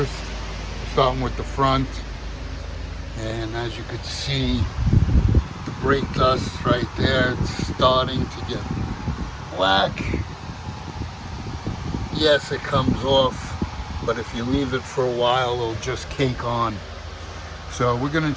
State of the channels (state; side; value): identical; both; correlation 1.00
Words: We're starting with the front. And as you could see, the brake dust right there, it's starting to get black. Yes, it comes off, but if you leave it for a while, it'll just cake on. So we're going